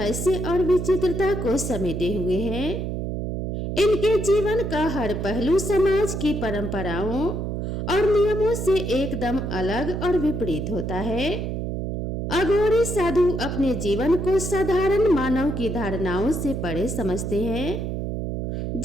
और विचित्रता को समेटे हुए है। इनके जीवन का हर पहलू समाज की परंपराओं और नियमों से एकदम अलग और विपरीत होता है। अघोरी साधु अपने जीवन को साधारण मानव की धारणाओं से परे समझते हैं।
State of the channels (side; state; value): right; noise; hum, 3 dB below the sound